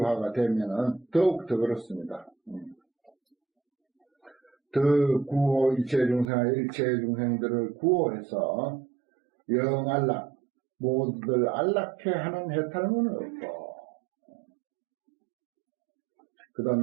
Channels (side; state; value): left; drops out; at 6.2 s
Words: 되면은 더욱더 그렇습니다. 더 구호 일체 중생들을 구호해서 영안락 모두들 안락해 하는 해탈문은 없고, 그